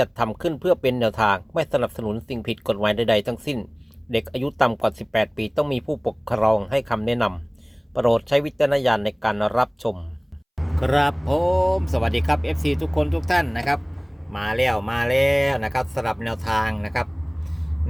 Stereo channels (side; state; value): both; identical; correlation 1.00